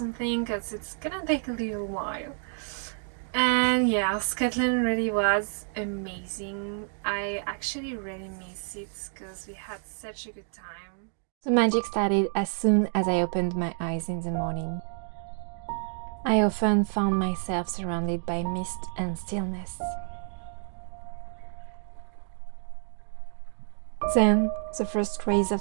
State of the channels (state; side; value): silent; left; 59 dB below the other